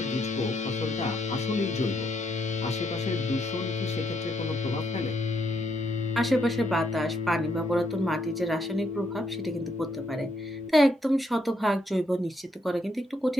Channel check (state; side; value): normal; both; correlation 0.75